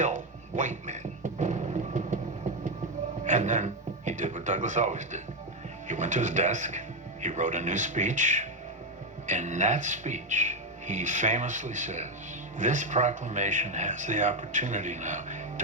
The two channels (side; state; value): both; normal; correlation 0.07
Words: white men. And then he did what Douglas always did. He went to his desk, he wrote a new speech. In that speech, he famously says, "This proclamation has the opportunity now